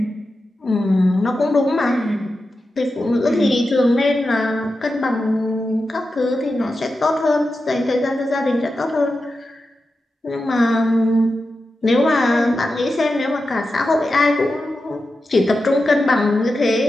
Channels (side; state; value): both; normal; correlation 0.91